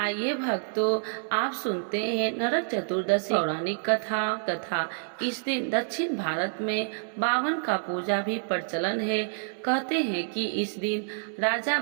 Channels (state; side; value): silent; left; 59 dB below the other